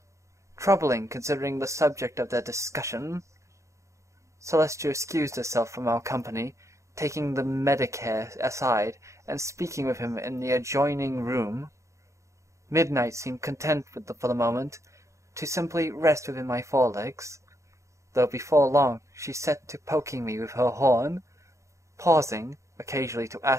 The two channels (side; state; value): left; late; 0.14 ms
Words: Troubling, considering the subject of their discussion. Celestia excused herself from our company, taking the Medicare aside and speaking with him in the adjoining room. Midnight seemed content for the moment to simply rest within my forelegs, though before long she set to poking me with her horn, pausing occasionally to